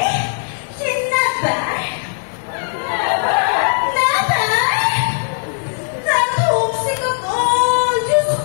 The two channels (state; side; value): silent; right; 67 dB below the other